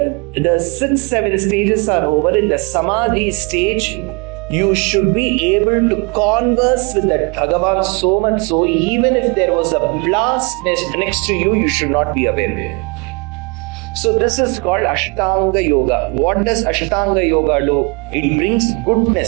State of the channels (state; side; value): quieter; left; 32.0 dB